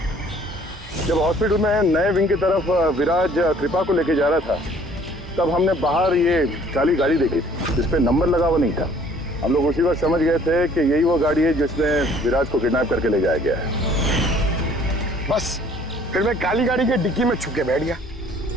जब हॉस्पिटल में नए विंग की तरफ विराज कृपा को लेके जा रहा था, तब हमने बाहर ये काली गाड़ी देखी थी जिसपे नंबर लगा हुआ नहीं था। हम लोग उसी वक्त समझ गए थे कि यही वो गाड़ी है जिसमें विराज को किडनैप करके ले जाया गया है। बस फिर मैं काली गाड़ी के डिक्की में छुप के बैठ गया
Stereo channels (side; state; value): both; normal; correlation 0.57